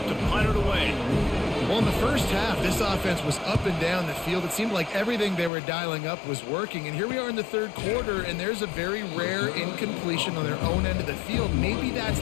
to punt it away. Well, in the first half, this offense was up and down the field. It seemed like everything they were dialing up was working. And here we are in the third quarter, and there's a very rare incompletion on their own end of the field. Maybe that's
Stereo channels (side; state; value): right; drops out; at 5.5 s